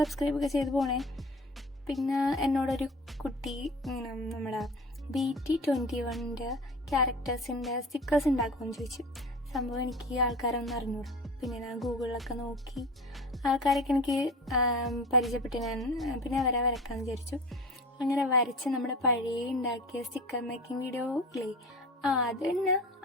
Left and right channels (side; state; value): both; normal; correlation 0.36